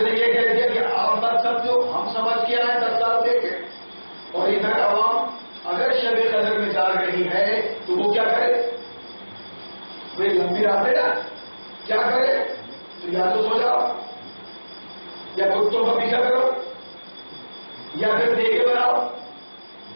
یہ کہہ دیا کہ آپ بات سمجھو، ہم سمجھ کے آئے 10 سال دے کے. اور ادھر عوام اگر شب قدر میں جا رہی ہے تو وہ کیا کرے؟ وہ لمبی رات ہے نا، کیا کرے؟ تو یا تو سو جاؤ، یا کتوں کا پیچھا کرو، یا پھر دیکھے بناؤ،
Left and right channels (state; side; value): inverted; both; correlation -1.00